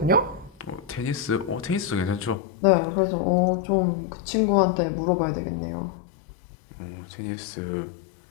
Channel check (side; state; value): right; drops out; at 2.4 s